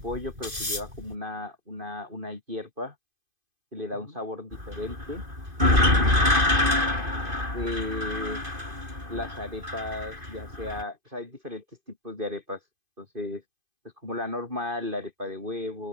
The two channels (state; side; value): late; left; 2.5 ms